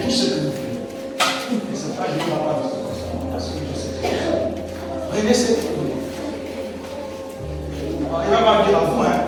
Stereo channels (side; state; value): both; identical; correlation 1.00